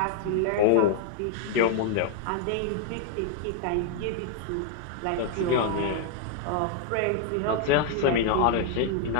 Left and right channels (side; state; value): both; different; correlation 0.00